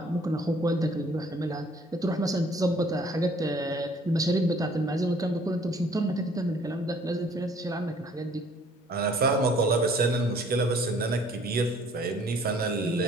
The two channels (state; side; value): normal; both; correlation 0.57